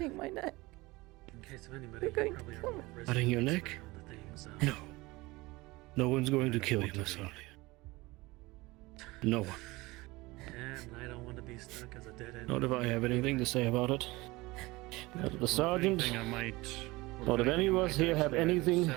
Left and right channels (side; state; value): left; quieter; 21.6 dB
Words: my neck. In case of anybody, You're going you probably to are kill more me. resident Cutting your around neck? the things, No. No one's going to I don't kill you, want to Miss be. Alia. No one. And I don't want to be stuck as a dead end. Not if I have anything to say about it. Not if the sergeant, Anything I might, or not if any of anything I us might here have actually either anything